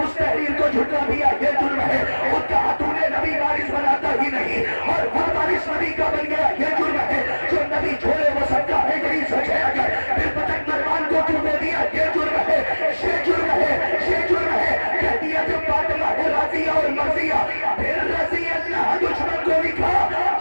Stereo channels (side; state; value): both; inverted; correlation -1.00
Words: تحریر کو جھٹلا دیا یہ جرم ہے. خود کہا تو نے نبی وارث بناتا ہی نہیں اور خود وارث نبی کا بن گیا یہ جرم ہے. جو نبی چھوڑے وہ صدقہ ہے, یہی سچ ہے. اگر پھر پتک مروان کو کیوں دے دیا یہ جرم ہے, یہ جرم ہے, یہ جرم ہے. کہہ دیا جب فاطمہ ہے راضیہ اور مرضیہ پھر رضی اللہ دشمن کو لکھا